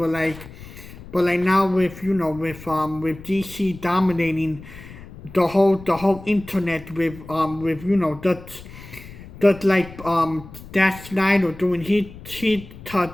like now with with DC dominating the whole internet with that like that Snyder doing his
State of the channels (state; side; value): noise; left; rumble, 16 dB below the sound